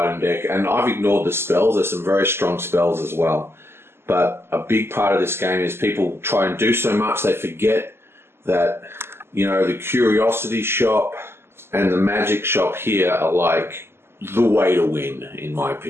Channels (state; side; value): late; left; 0.12 ms